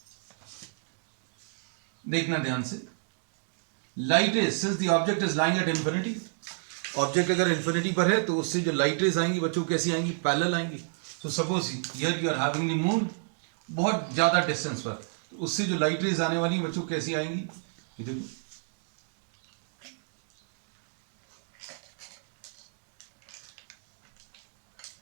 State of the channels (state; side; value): silent; left; digital silence